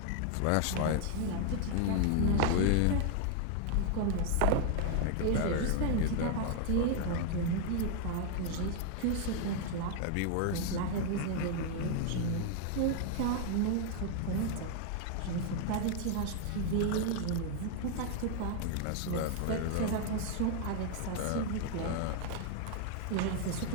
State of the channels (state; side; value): different; both; correlation 0.00